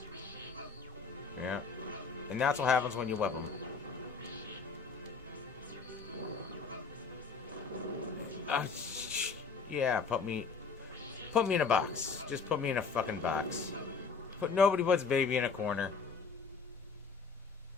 Yeah. And that's what happens when you whip them. Yeah, put me in a box. Just put me in a fucking box. Nobody puts baby in a corner.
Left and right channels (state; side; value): quieter; right; 5.2 dB